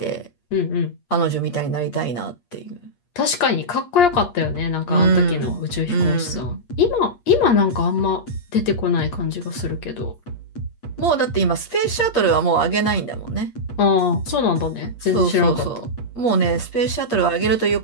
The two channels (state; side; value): late; right; 8.5 ms